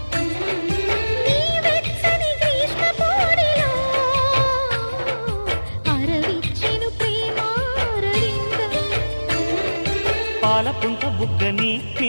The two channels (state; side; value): inverted; both; correlation -1.00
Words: నీ వెచ్చని గ్రీష్మ పోడిలో అరవిచ్చెను ప్రేమారవిందం. పాలపుంట బుగ్గని